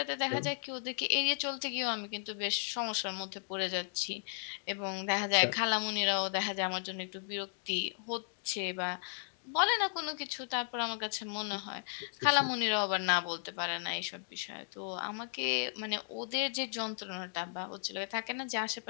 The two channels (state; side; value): silent; right; digital silence